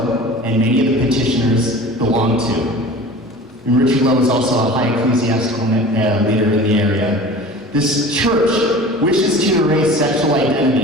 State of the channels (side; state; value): both; normal; correlation 0.39